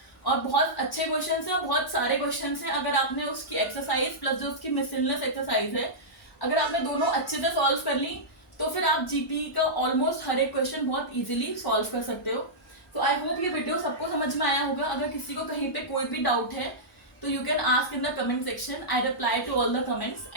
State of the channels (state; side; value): normal; both; correlation -0.13